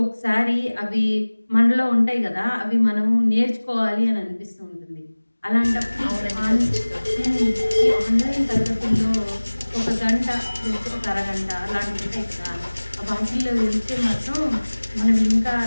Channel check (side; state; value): both; inverted; correlation -1.00